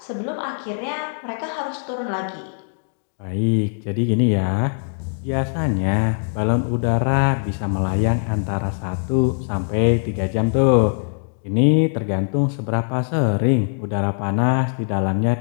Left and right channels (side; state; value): right; silent; 61 dB below the other